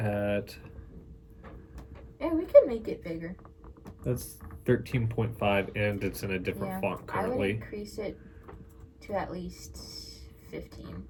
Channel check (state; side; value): identical; both; correlation 1.00